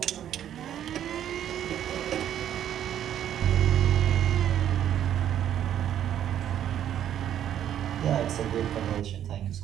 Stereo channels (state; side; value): quieter; left; 10.5 dB